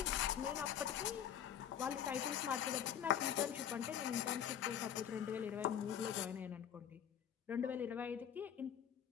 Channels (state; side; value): quieter; right; 9.3 dB